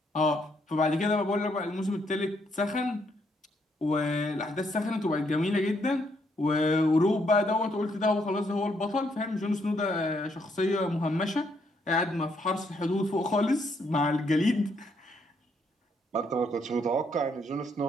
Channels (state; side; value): normal; both; correlation 0.73